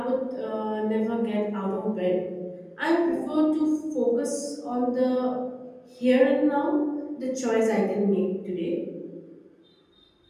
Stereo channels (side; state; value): both; identical; correlation 1.00